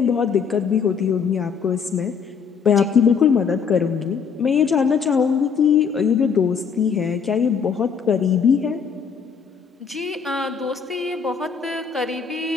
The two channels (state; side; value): quieter; right; 6.3 dB